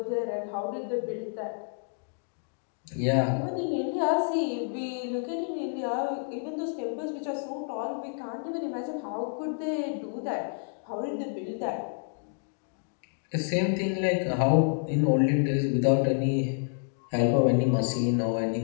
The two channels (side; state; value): right; silent; digital silence